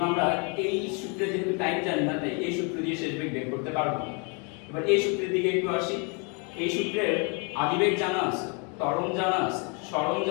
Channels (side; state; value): right; quieter; 34.4 dB